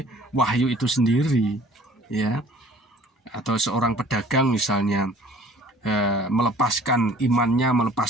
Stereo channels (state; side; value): normal; both; correlation 0.52